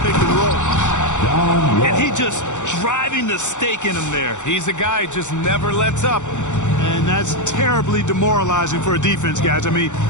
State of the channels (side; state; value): right; late; 0.85 ms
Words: and roll. And he just driving the stake in him there. He's a guy who just never lets up. And that's terribly demoralizing for a defense, guys. I mean,